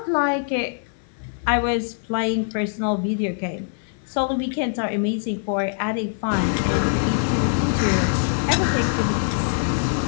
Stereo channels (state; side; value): silent; right; 56 dB below the other